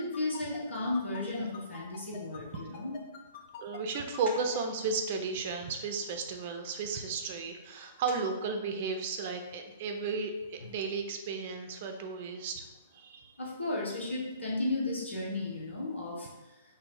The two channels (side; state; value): both; inverted; correlation -0.46